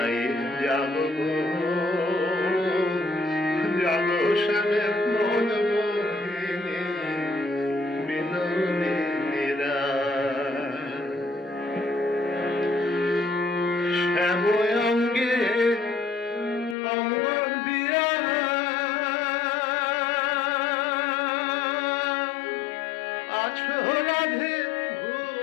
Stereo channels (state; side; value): drops out; right; at 16.8 s